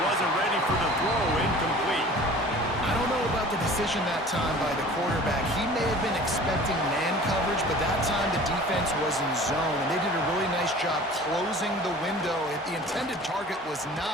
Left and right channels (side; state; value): both; normal; correlation 0.44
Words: wasn't ready for the throw, incomplete. I don't know about the decision that time by the quarterback. He may have been expecting man coverage, but that time the defense was in zone, and they did a really nice job closing the window. The intended target was